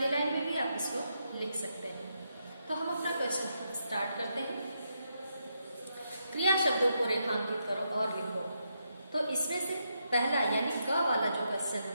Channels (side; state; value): both; inverted; correlation -0.81